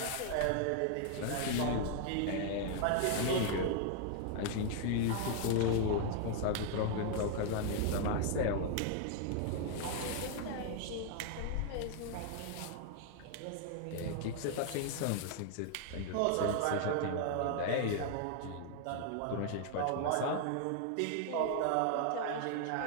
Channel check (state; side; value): different; both; correlation 0.00